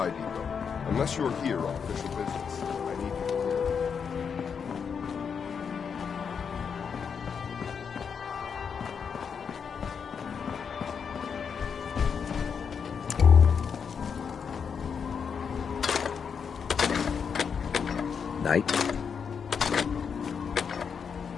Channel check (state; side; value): quieter; right; 6.6 dB